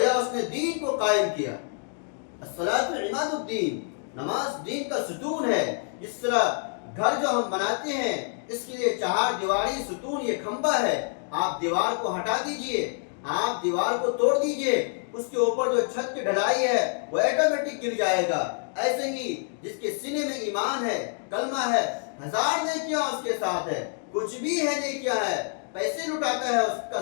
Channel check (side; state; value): right; silent; 58 dB below the other